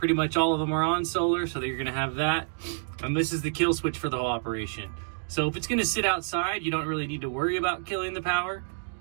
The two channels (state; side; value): silent; left; digital silence